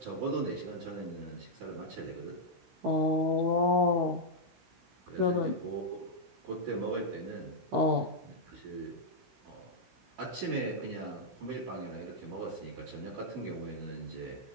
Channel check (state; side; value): late; left; 16 ms